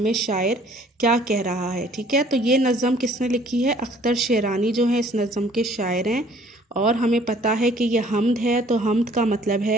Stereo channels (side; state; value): both; normal; correlation 0.56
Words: शायर क्या कह रहा है। ठीक है, तो ये नज़म किसने लिखी है? अख्तर शेरानी जो है इस नज़म के शायर हैं। और हमें पता है कि ये हम्द है, तो हम्द का मतलब